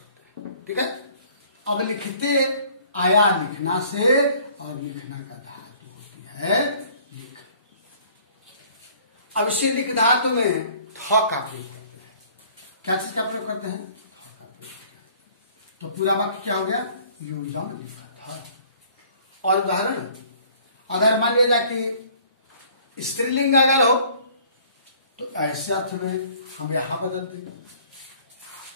हैं। ठीक है। अब लिखते आया लिखना से, और लिखना का धातु होती है लिख। अब इसे लिख धातु में थ का प्रयोग करते हैं। क्या चीज का प्रयोग करते हैं? थ का प्रयोग करते हैं। तो पूरा वाक्य क्या हो गया? यूयम लिखत। और उदाहरण, अगर मान लिया जाए कि स्त्रीलिंग अगर हो, तो ऐसे अर्थ में हम यहां बदल देंगे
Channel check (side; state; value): both; inverted; correlation -0.55